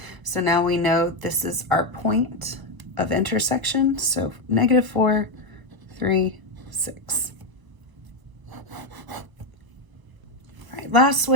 So now we know this is our point of intersection. So negative 4, 3, 6. All right, last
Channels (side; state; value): left; late; 1.0 ms